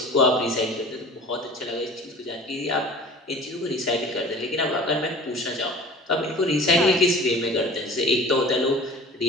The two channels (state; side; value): normal; both; correlation 0.43